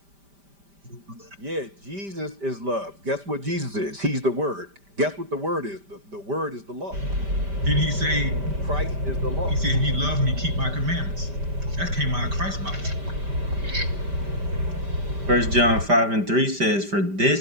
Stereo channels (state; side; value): late; left; 5.1 ms